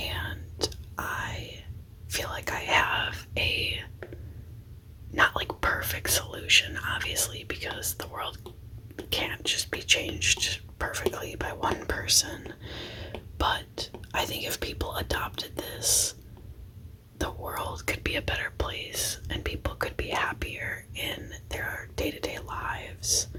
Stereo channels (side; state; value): both; identical; correlation 1.00